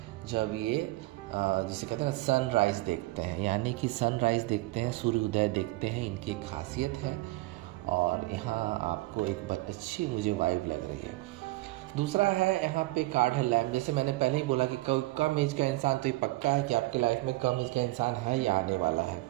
जब ये जिसे कहते हैं ना सनराइज़ देखते हैं, यानी कि सनराइज़ देखते हैं, सूर्योदय देखते हैं, इनकी एक खासियत है। और यहाँ आपको एक अच्छी मुझे वाइब लग रही है। दूसरा है यहाँ पे कार्ड है लैम्प। जैसे मैंने पहले ही बोला कि कम एज का इंसान, तो ये पक्का है कि आपके लाइफ में कम एज का इंसान है या आने वाला है।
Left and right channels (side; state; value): left; quieter; 20.3 dB